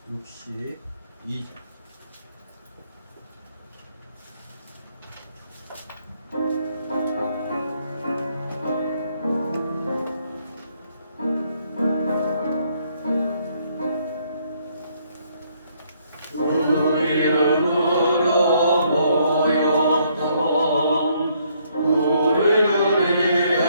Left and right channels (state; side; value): inverted; both; correlation -0.69